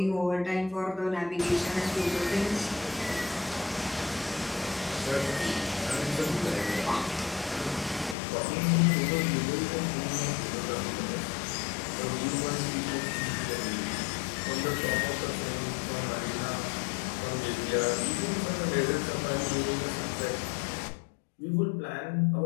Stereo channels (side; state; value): right; drops out; at 8.2 s